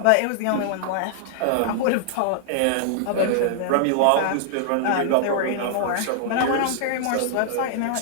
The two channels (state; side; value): different; both; correlation -0.01